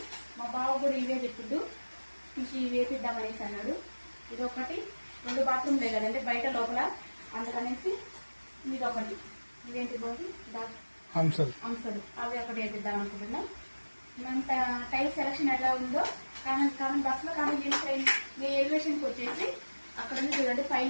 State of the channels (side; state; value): both; inverted; correlation -1.00